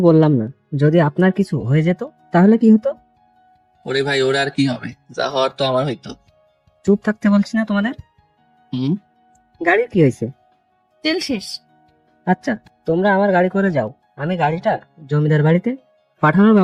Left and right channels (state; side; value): identical; both; correlation 1.00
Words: বললাম না। যদি আপনার কিছু হয়ে যেত তাহলে কি হতো? ওরে ভাই, ওরা আর কি হবে, যা হওয়ার তো আমার হইতো। চুপ থাকতে বলছি না তোমাদের? হুম। গাড়ির কি হয়েছে? তেল শেষ। আচ্ছা, তোমরা আমার গাড়ি করে যাও, আমি গাড়িটা জমিদার বাড়িতে পাঠানোর